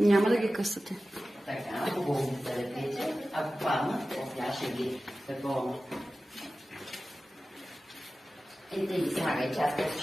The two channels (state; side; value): normal; both; correlation 0.95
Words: няма да ги късате. Така, хубаво да лепите. Ако паднат, тя ще ги такова. Ето и слагай, че аз късно